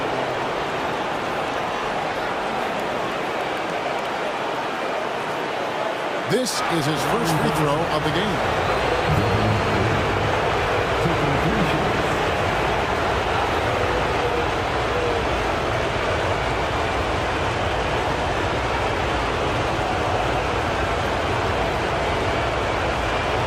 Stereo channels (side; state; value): both; identical; correlation 1.00